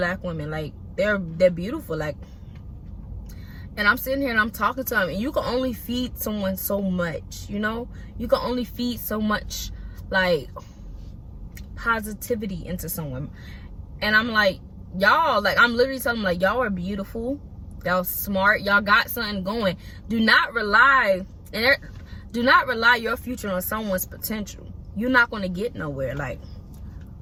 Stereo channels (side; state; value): both; identical; correlation 1.00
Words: women. Like, they're beautiful. Like, and I'm sitting here and I'm talking to them, and you can only feed someone so much, you know? You can only feed so much, like, positivity into someone. And I'm like, y'all, like, I'm literally telling them, like, y'all are beautiful. Y'all smart. Y'all got something going. Do not rely your future on someone's potential. You're not going to get nowhere. Like,